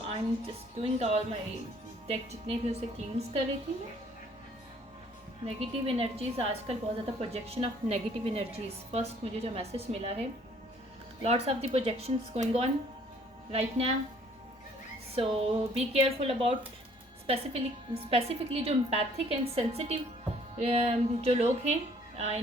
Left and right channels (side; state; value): both; normal; correlation 0.60